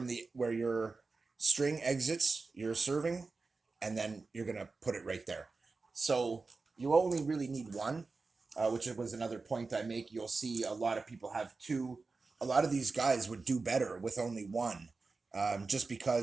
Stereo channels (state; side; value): quieter; left; 4.0 dB